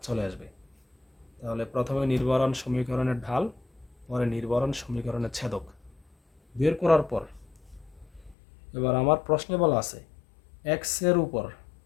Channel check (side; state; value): right; drops out; at 8.3 s